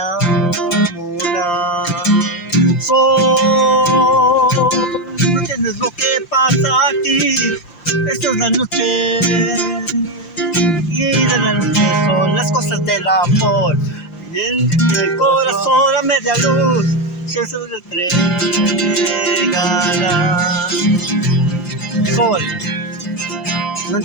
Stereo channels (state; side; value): late; right; 5.8 ms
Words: enamorar. ¿No entiendes lo que pasa aquí? Esta es la noche, y de la noche son las cosas del amor, y en el corazón a media luz, si eso se entregará. Sol, no